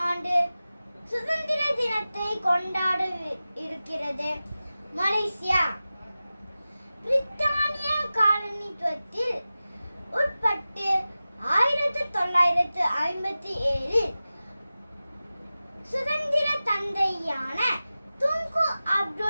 ஆண்டு சுதந்திர தினத்தை கொண்டாட இருக்கிறது மலேசியா. பிரித்தானிய காலனித்துவத்தில் உட்பட்டு 1957 சுதந்திர தந்தையான துங்கு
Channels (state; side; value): inverted; both; correlation -0.95